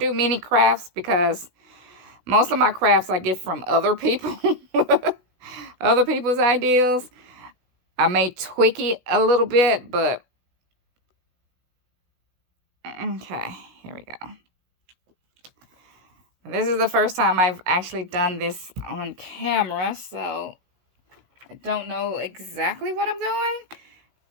many crafts because most of my crafts I get from other people, other people's ideas. I may tweak it a little bit, but okay, here we go. This is the first time I've actually done this on camera, so I don't know exactly what I'm doing.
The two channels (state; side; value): late; left; 16 ms